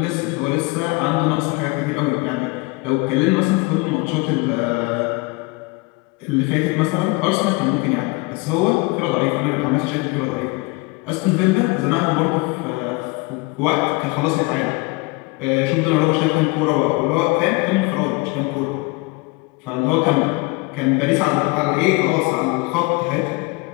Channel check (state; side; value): quieter; right; 25.3 dB